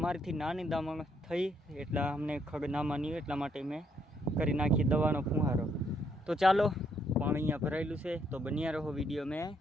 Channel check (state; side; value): normal; both; correlation 0.72